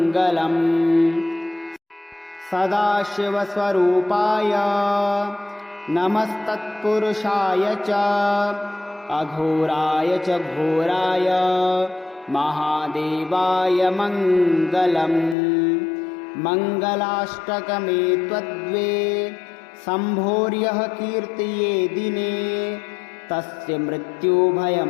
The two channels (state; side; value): drops out; right; at 15.4 s